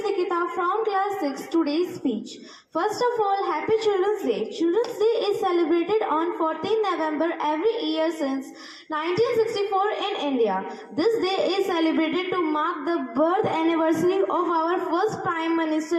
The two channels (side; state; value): both; identical; correlation 1.00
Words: Nikita from class 6. Today's speech. First of all, Happy Children's Day. Children's Day is celebrated on 14 November every year since 1964 in India. This day is celebrated to mark the birth anniversary of our first Prime